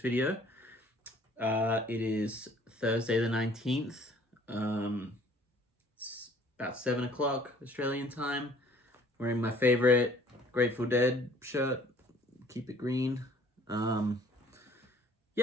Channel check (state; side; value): normal; both; correlation 0.55